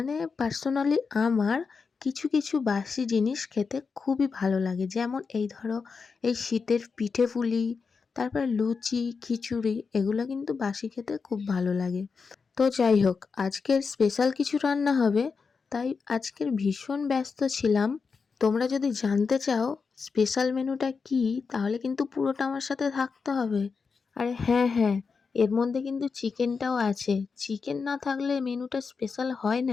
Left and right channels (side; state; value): right; quieter; 5.1 dB